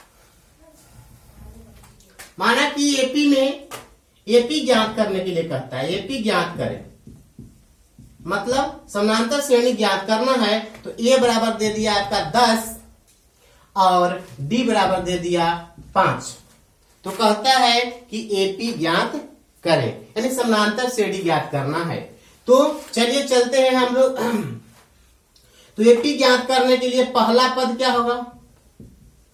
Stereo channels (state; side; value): identical; both; correlation 1.00